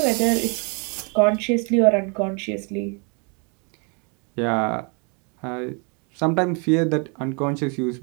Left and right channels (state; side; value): quieter; left; 34.6 dB